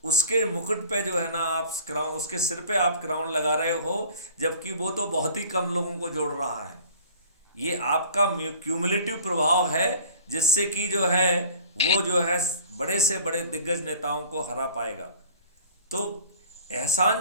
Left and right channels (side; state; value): both; inverted; correlation -0.46